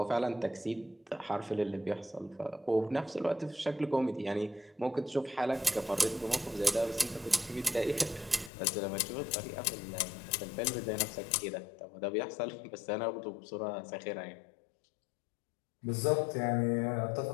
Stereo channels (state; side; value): drops out; right; at 8.5 s